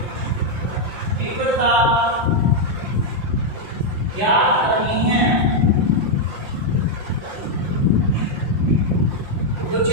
तीव्रता ज्ञात करनी है। विद्युत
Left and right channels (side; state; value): left; late; 5.7 ms